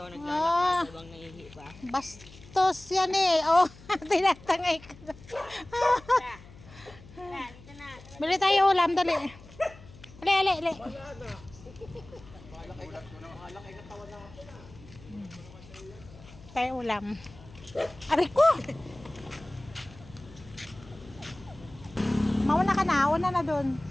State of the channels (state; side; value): noise; left; hum, 20 dB below the sound